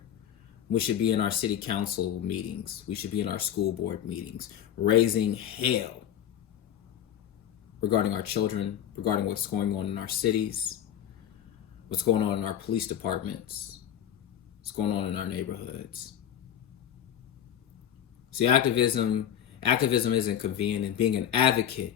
we should be in our city council meetings, we should be in our school board meetings, raising hell regarding our children, regarding what's going on in our cities, what's going on in our police departments, what's going on in our neighborhoods. See, activism isn't convenient, and being an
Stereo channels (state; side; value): quieter; right; 10.1 dB